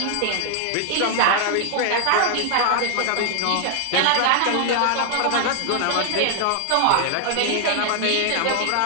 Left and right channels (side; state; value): both; different; correlation 0.00